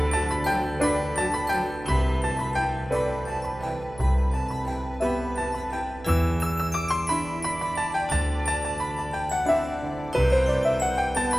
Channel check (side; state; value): right; noise; hum, 20 dB below the sound